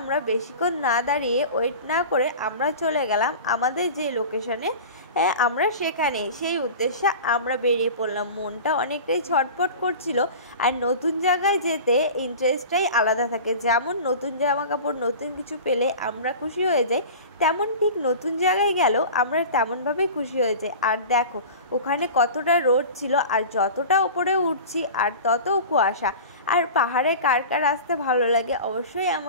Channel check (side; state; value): both; inverted; correlation -0.35